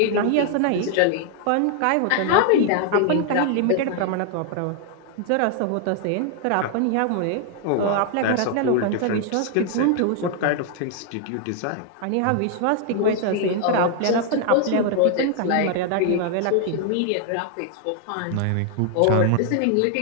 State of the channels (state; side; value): different; both; correlation 0.00